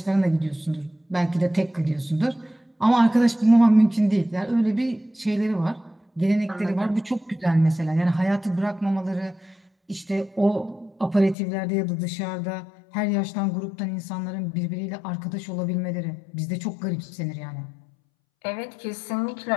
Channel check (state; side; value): drops out; right; at 11.4 s